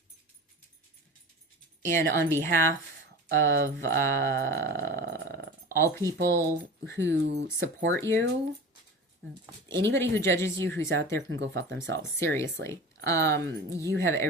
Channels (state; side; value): normal; both; correlation 0.34